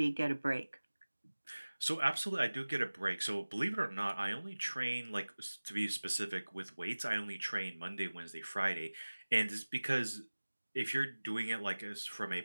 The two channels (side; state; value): both; inverted; correlation -1.00